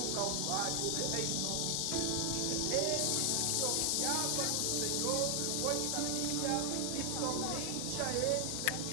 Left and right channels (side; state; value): both; different; correlation 0.00